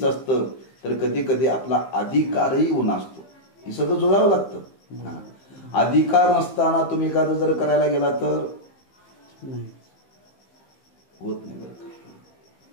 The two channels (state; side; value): late; right; 15 ms